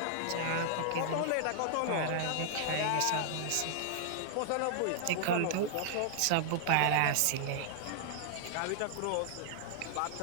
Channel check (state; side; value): different; both; correlation -0.01